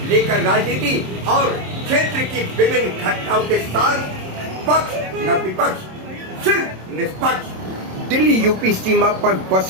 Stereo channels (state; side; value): late; left; 27 ms